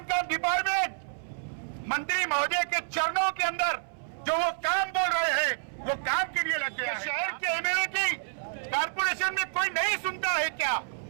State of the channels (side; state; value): left; silent; 59 dB below the other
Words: का डिपार्टमेंट मंत्री महोदय के चरणों के अंदर जो वो काम बोल रहे हैं वो काम के लिए लग गया। शहर के एमएलए की कारपोरेशन में कोई नहीं सुनता है क्या?